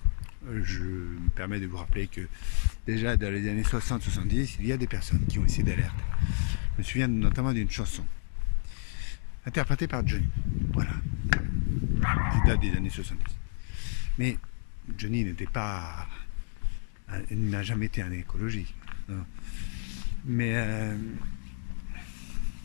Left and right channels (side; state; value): right; silent; digital silence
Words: je me permets de vous rappeler que déjà dans les années 60-70, il y a des personnes qui ont essayé d'alerter. Je me souviens notamment d'une chanson interprétée par Johnny. Voilà. Qui date des années 70. Mais Johnny n'était pas... Il n'a jamais été un écologiste. Non. Mais